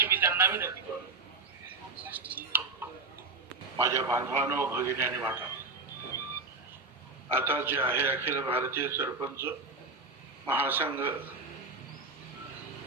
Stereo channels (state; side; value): quieter; left; 3.5 dB